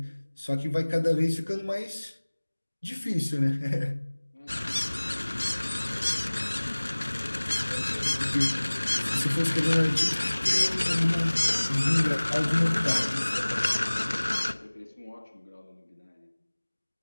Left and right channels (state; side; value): inverted; both; correlation -1.00